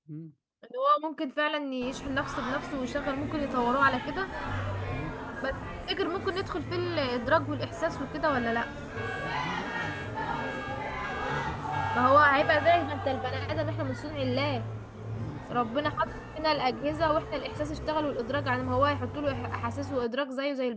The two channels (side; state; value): both; identical; correlation 1.00